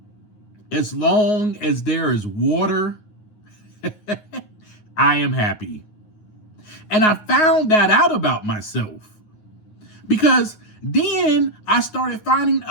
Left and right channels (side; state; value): right; late; 9.5 ms